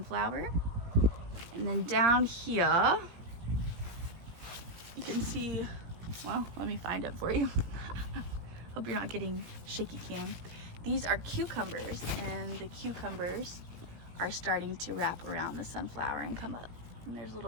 And then down here, you can see, well, let me find it for you. Hope you're not getting shaky cam. These are cucumbers, and the cucumbers are starting to wrap around the sunflower and come up. And there's a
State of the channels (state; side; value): late; left; 18 ms